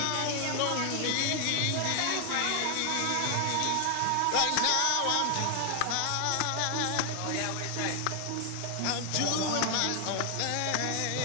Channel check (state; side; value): different; both; correlation 0.00